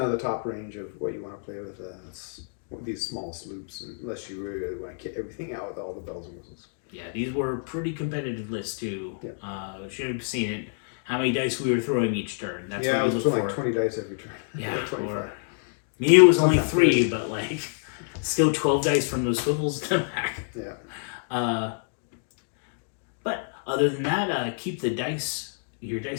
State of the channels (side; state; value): right; silent; digital silence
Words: the top range of what you want to play with these small sloops, unless you really want to kit everything out with all the bells and whistles. Yeah, these were pretty competitive lists too. Yeah. Should have seen it. How many dice we were throwing each turn. That's what you look for. Like 20 dice every turn. Yeah, or me it was only 3, but like still 12 dice from those swivels to the back. Yeah. But other than that, keep your dice